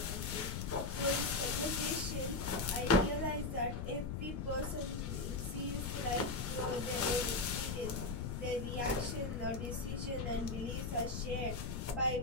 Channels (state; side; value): noise; left; rumble, 3 dB below the sound